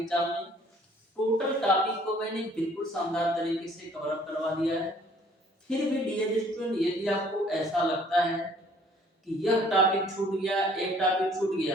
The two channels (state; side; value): normal; both; correlation 0.58